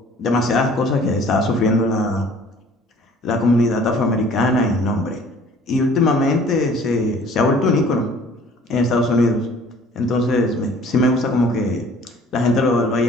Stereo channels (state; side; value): normal; both; correlation 0.52